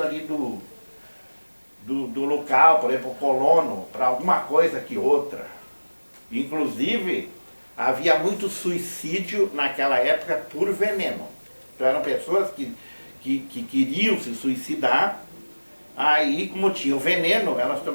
ali do local, por exemplo, o colono, para alguma coisa que outra. Inclusive, havia muito suicídio naquela época por veneno. Então eram pessoas que queriam se suicidar. Aí, como tinha o veneno, elas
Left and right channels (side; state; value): both; inverted; correlation -1.00